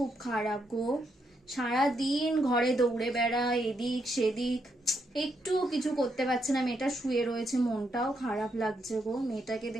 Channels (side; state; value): both; normal; correlation 0.79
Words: খারাপ গো। সারাদিন ঘরে দৌড়ে বেড়ায়, এদিক সেদিক, একটু কিছু করতে পারছে না। মেয়েটা শুয়ে রয়েছে, মনটাও খারাপ লাগছে গো। মেয়েটাকে